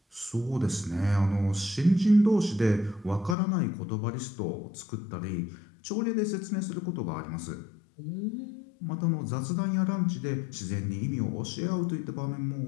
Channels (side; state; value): right; drops out; at 3.4 s